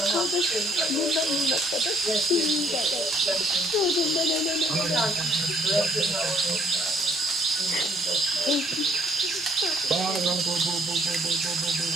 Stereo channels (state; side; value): normal; both; correlation 0.64